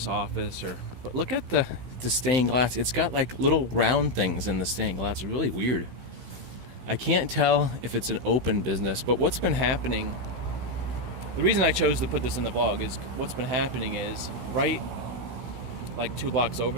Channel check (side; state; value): left; late; 16 ms